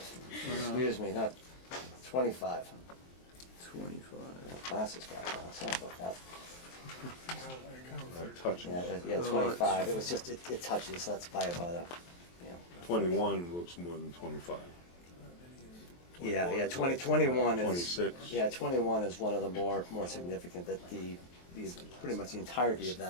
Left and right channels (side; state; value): right; late; 23 ms